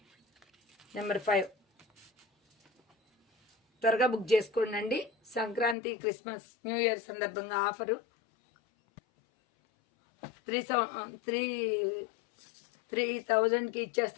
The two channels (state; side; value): drops out; right; at 5.8 s